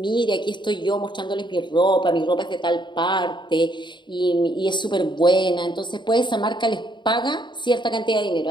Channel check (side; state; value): right; late; 0.22 ms